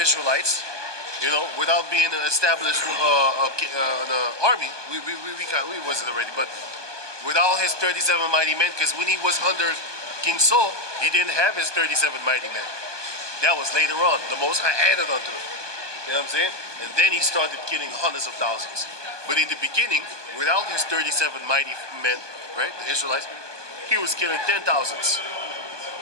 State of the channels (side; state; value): left; late; 1.2 ms